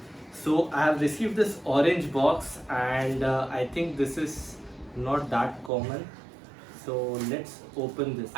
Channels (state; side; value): drops out; left; at 5.7 s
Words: I have received this orange box and I think this is not that common. So let's open this.